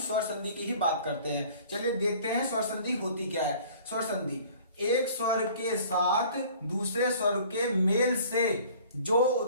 संधि की ही बात करते हैं। चलिए देखते हैं स्वर संधि होती क्या है। स्वर संधि एक स्वर के साथ दूसरे स्वर के मेल से जो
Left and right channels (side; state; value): both; inverted; correlation -0.50